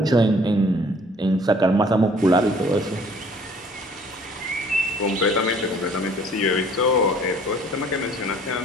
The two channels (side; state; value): both; normal; correlation 0.56